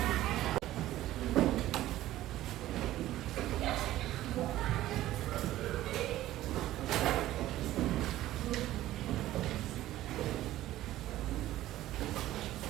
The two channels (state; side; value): quieter; left; 14.7 dB